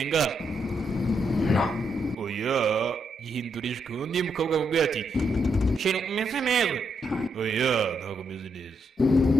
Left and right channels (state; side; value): normal; both; correlation 0.79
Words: No. Oya, yihindurijwe undi mukobwa mubwira ati shira umeze neza. Oya, ntabwo meze neza.